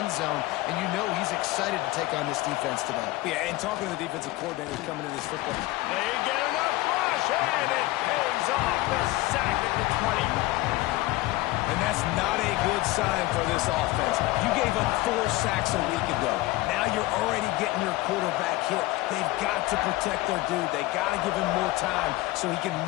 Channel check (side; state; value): right; quieter; 18.7 dB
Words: zone, and you know he's excited to take on this defense today. Yeah, and talking to the defensive coordinators coming in this football. They get enough rush, and it pays off. The sack at the 20. And that's not a good sign for this offense. You gave up 4 sacks a week ago. Now you're already getting your quarterback hit. They've got to protect their dude. They got to give him more time so he can